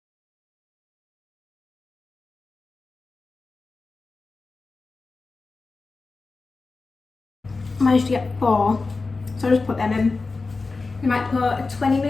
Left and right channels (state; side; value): quieter; right; 3.9 dB